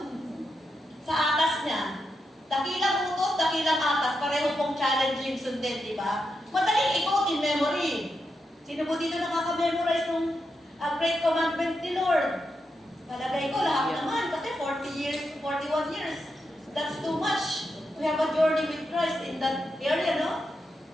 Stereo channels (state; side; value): normal; both; correlation 0.86